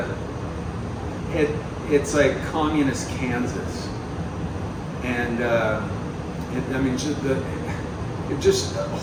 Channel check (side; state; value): both; identical; correlation 1.00